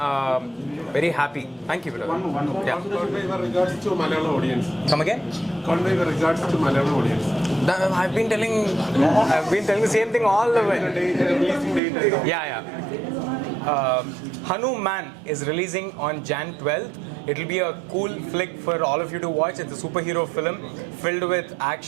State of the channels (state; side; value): drops out; left; at 11.8 s